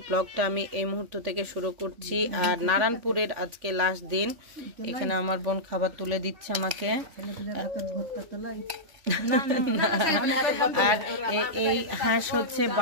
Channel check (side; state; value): left; late; 3.5 ms